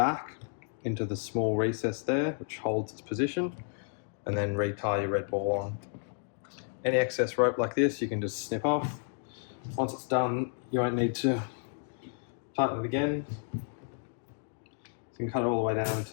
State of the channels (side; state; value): right; silent; 57 dB below the other